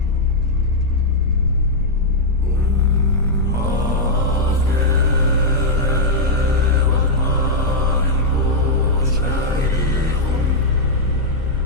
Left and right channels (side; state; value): left; noise; rumble, 6 dB below the sound